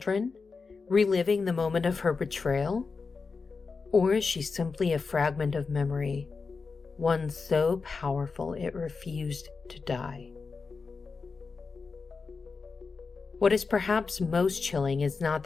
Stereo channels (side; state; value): right; quieter; 4.6 dB